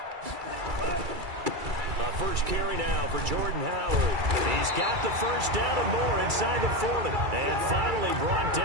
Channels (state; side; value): late; left; 2.3 ms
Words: First carry now for Jordan Howard. He's got the first down and more inside the 40. And finally brought